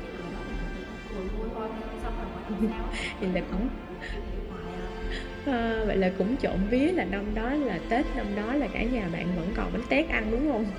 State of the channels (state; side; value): identical; both; correlation 1.00